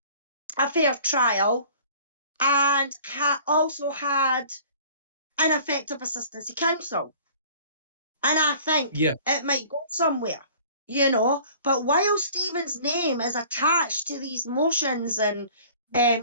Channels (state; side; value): inverted; both; correlation -0.48